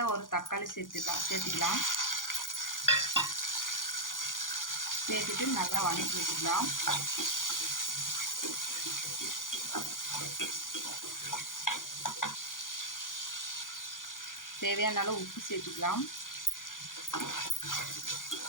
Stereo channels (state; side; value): late; right; 0.89 ms